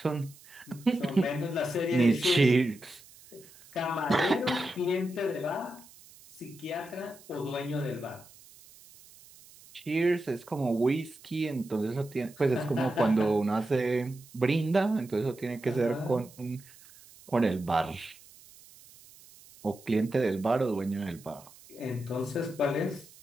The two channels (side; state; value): right; noise; hiss, 23 dB below the sound